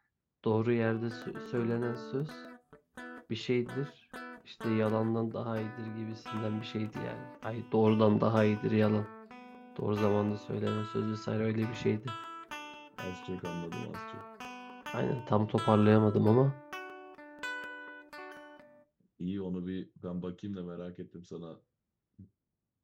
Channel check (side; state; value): both; identical; correlation 1.00